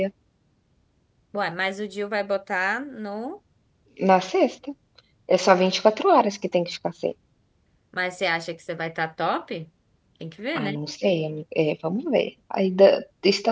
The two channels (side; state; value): both; identical; correlation 1.00